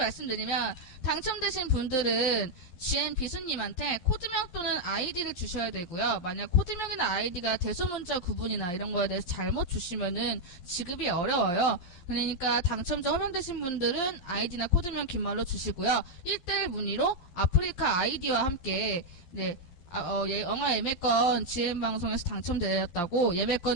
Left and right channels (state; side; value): late; right; 12 ms